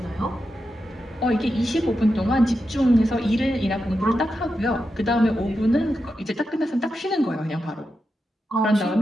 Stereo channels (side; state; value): both; normal; correlation 0.88